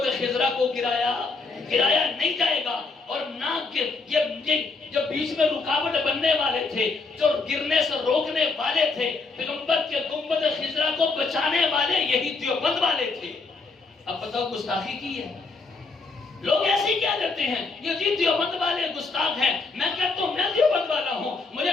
خضرا کو گرایا نہیں جائے گا، اور نہ کہ یہ جو بیچ میں رکاوٹ بننے والے تھے، جو گرنے سے روکنے والے تھے، پیغمبر کے گنبد خضرا کو بچانے والے یہی دیوبند والے تھے۔ اب بتاؤ گستاخی کی ہے؟ لوگ ایسے ہی کیا کرتے ہیں، یہ جی دیوبند والے گستاخ ہیں۔ میں کہتا ہوں میں دیوبند والا ہوں، مجھے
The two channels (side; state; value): right; quieter; 4.0 dB